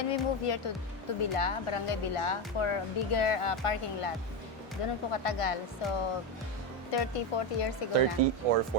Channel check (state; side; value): normal; both; correlation 0.12